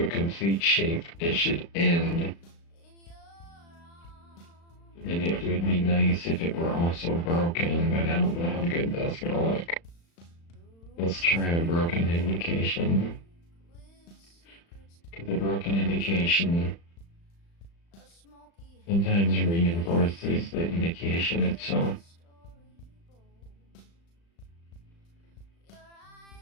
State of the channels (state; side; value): late; right; 35 ms